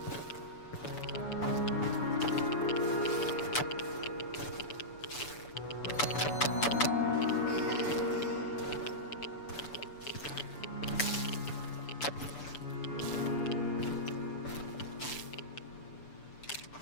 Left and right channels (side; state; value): right; late; 6.9 ms